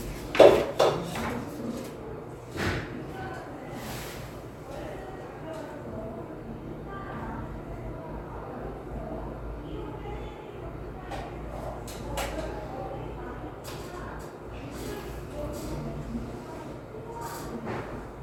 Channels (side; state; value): both; identical; correlation 1.00